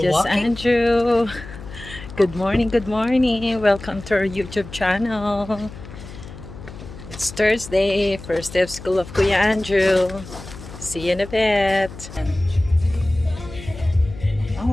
Just Andrew. Good morning, good morning. Welcome to our YouTube channel. It's Thursday, first day of school of Kuya Andrew. See you in a bit.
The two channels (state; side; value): noise; left; hum, 14 dB below the sound